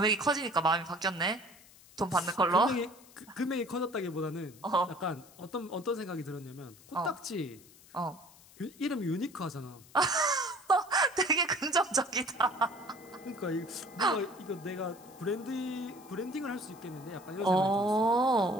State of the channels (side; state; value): left; noise; hiss, 24 dB below the sound